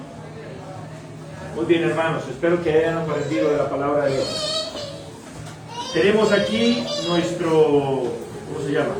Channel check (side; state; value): both; identical; correlation 1.00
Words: Muy bien, hermanos, espero que hayan aprendido de la palabra de Dios. Tenemos aquí nuestro, ¿cómo se llama?